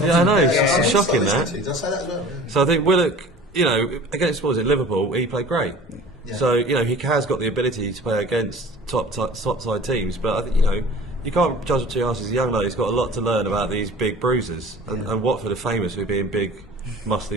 I know. It's shocking that. Did I say that as well? So I think Willock, against what was it, Liverpool, he played great. So he has got the ability to play against top side teams, but I think you can't judge him too harsh. He's a young lad. He's got a lot to learn about these big bruisers, and Watford are famous for being big,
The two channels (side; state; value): both; normal; correlation 0.43